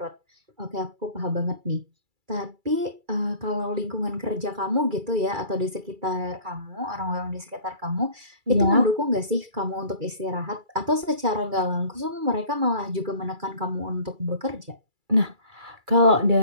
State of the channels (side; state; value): left; late; 2.3 ms